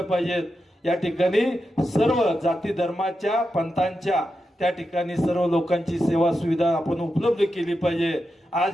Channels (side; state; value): both; normal; correlation 0.88